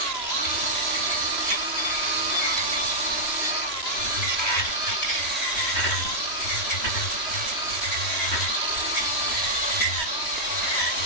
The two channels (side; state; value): right; late; 3.0 ms